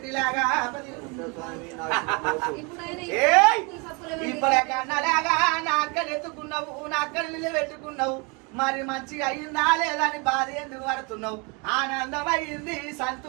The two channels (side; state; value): left; quieter; 31.3 dB